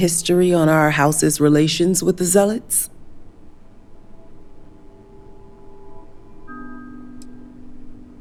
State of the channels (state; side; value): identical; both; correlation 1.00